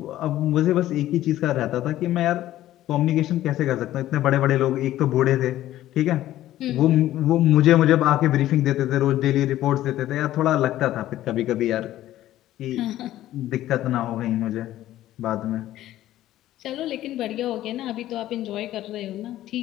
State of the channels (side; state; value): right; quieter; 13.9 dB